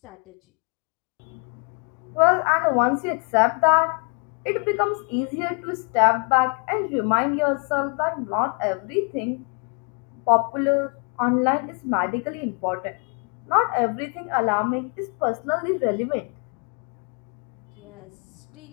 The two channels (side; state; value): right; quieter; 38.6 dB